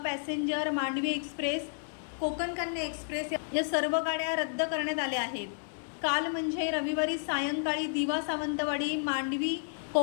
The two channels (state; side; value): silent; right; digital silence